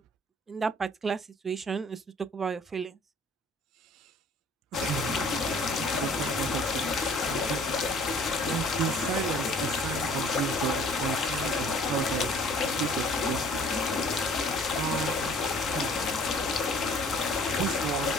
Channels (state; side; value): normal; both; correlation 0.53